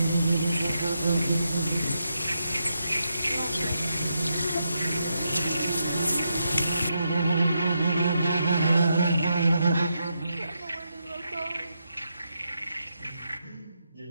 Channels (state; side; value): inverted; both; correlation -0.83